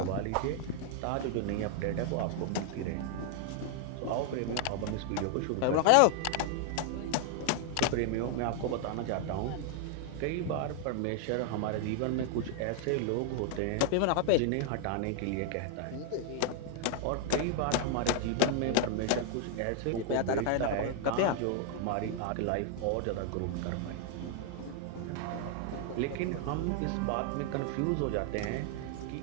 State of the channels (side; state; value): both; different; correlation 0.00